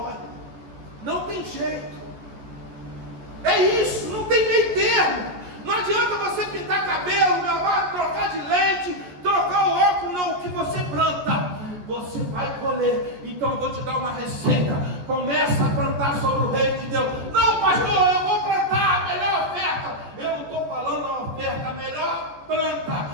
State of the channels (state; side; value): late; left; 14 ms